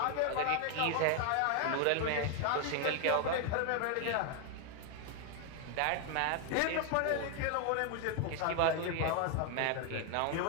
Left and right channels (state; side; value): different; both; correlation 0.01